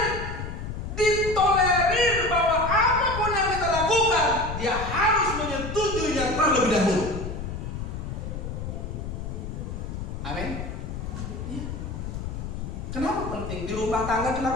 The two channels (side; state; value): left; noise; rumble, 6 dB below the sound